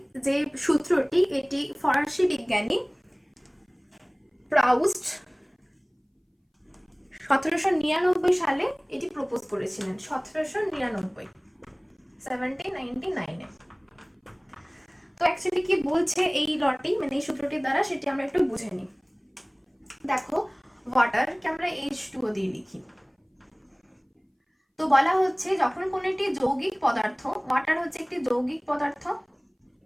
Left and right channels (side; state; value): both; identical; correlation 1.00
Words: যে সূত্রটি, এটি ফরাসি বিজ্ঞানী প্রাউস্ট 1799 সালে এটি প্রপোজ করেছিলেন। 1799 তো অ্যাকচুয়ালি কি বলছে এই লটি মানে এই সূত্রটির দ্বারা, সেটি আমরা একটু বুঝে নিই। দেখো ওয়াটারকে আমরা H2O দিয়ে লিখি। তো বলা হচ্ছে যখন কোন একটি যৌগিক পদার্থ, ওয়াটার হচ্ছে একটি যৌগিক পদার্থ,